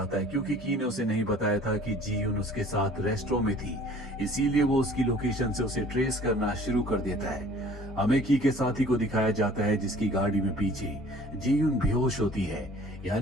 है, क्योंकि की ने उसे नहीं बताया था कि जियोन उसके साथ रेस्टोरेंट में थी। इसीलिए वो उसकी लोकेशन से उसे ट्रेस करना शुरू कर देता है। हमें की के साथी को दिखाया जाता है जिसकी गाड़ी में पीछे जियोन बेहोश होती है,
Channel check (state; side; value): normal; both; correlation 0.51